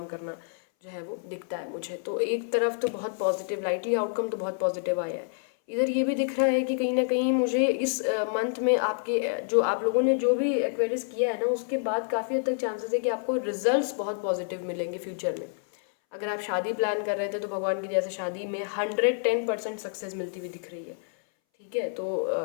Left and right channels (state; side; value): silent; right; 59 dB below the other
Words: करना जो है वो दिखता है मुझे। तो एक तरफ तो बहुत पॉजिटिव, लाइटली आउटकम तो बहुत पॉजिटिव आया है। इधर ये भी दिख रहा है कि कहीं ना कहीं मुझे इस मंथ में आपके जो आप लोगों ने जो भी एक्वेरियस किया है ना, उसके बाद काफ़ी हद तक चांसेस है कि आपको रिजल्ट्स बहुत पॉजिटिव मिलेंगे फ्यूचर में। अगर आप शादी प्लान कर रहे थे तो भगवान की दया से शादी में 110% सक्सेस मिलती हुई दिख रही है। ठीक है, तो